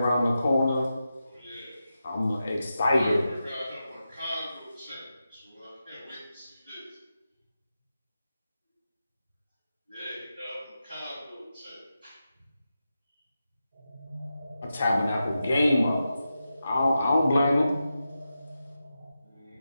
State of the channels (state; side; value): inverted; both; correlation -0.90